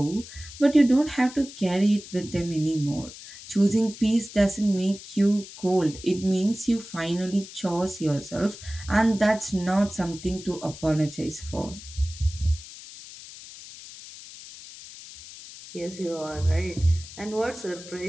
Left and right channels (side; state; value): left; noise; hiss, 15 dB below the sound